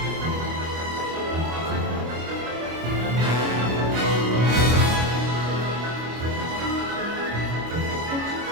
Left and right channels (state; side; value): late; left; 25 ms